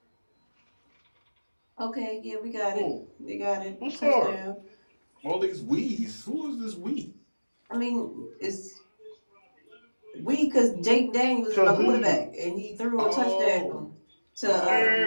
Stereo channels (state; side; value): inverted; both; correlation -1.00